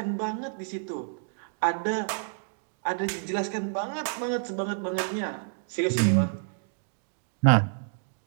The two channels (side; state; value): left; silent; digital silence